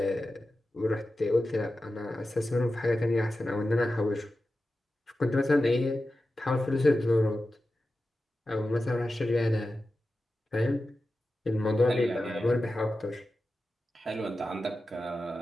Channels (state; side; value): normal; both; correlation 0.93